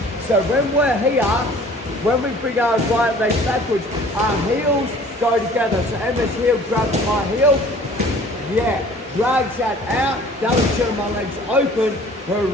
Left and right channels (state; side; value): normal; both; correlation 0.50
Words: So when we're here, when we bring our right leg backwards, our heels go together. So Emma's heel grabs my heel, yeah, drags that out, that'll turn my legs open, her